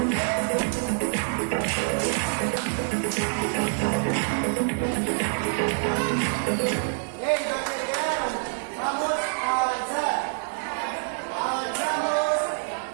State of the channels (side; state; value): left; silent; digital silence